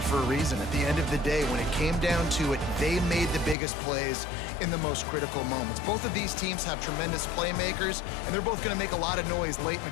for a reason. At the end of the day, when it came down to it, they made the biggest plays in the most critical moments. Both of these teams have tremendous playmakers, and they're both going to make a lot of noise late in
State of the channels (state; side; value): drops out; right; at 3.6 s